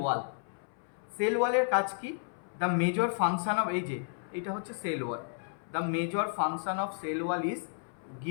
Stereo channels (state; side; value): silent; right; 56 dB below the other